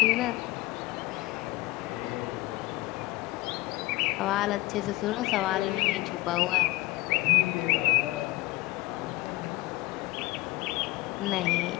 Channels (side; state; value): right; quieter; 20.0 dB